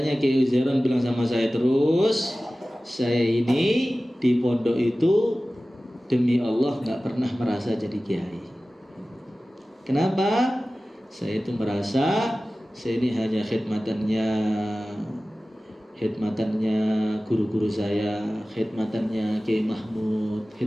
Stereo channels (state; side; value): normal; both; correlation 0.96